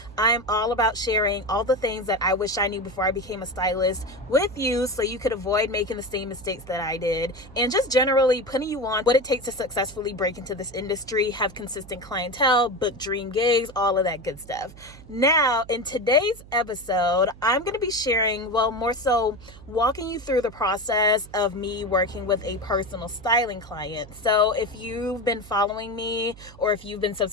I'm all about sharing all the things that I wish I knew before I became a stylist with you so you could avoid making the same mistakes that I did, and just generally putting you on what it takes to successfully break into this industry, have consistent clientele, book dream gigs, all of that good stuff. Now, in today's episode, I'm going to be sharing, more so walking you through the process of me working with a personal styling client. So if you've been following me or if you've been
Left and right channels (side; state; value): right; noise; hum, 19 dB below the sound